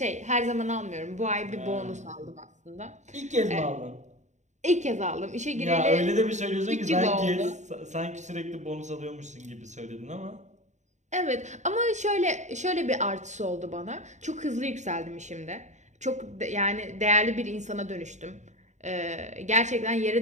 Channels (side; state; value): left; late; 0.34 ms